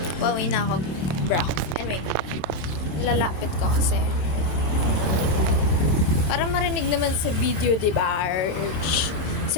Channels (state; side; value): late; right; 27 ms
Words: Pauwi na ako, bro. Anyway, lalapit ko kasi para marinig naman sa video, diba?